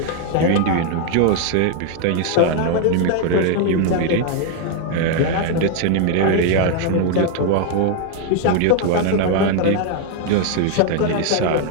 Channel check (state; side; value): different; both; correlation 0.01